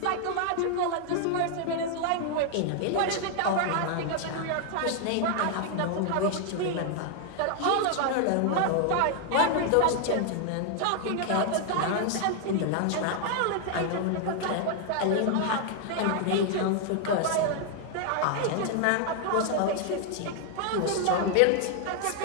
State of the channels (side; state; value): both; different; correlation 0.00